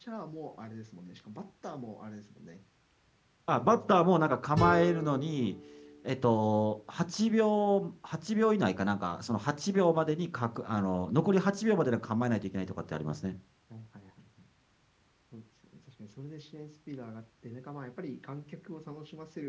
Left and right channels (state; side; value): identical; both; correlation 1.00